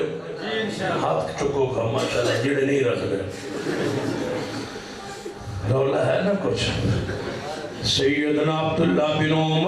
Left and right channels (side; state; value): both; identical; correlation 1.00